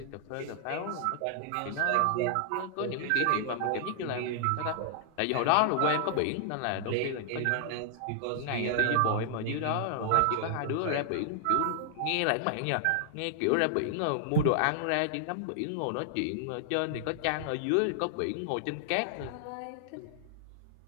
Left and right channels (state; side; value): different; both; correlation 0.00